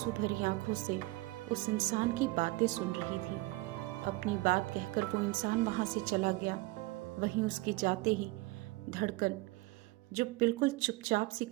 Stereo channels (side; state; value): left; quieter; 21.4 dB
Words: भरी आंखों से उस इंसान की बातें सुन रही थी। अपनी बात कहकर वो इंसान वहां से चला गया। वहीं उसके जाते ही धड़कन जो बिल्कुल चुपचाप सी